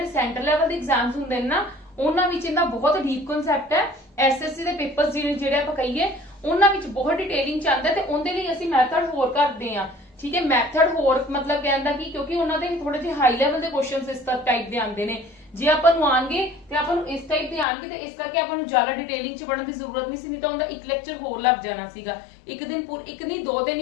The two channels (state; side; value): drops out; right; at 17.7 s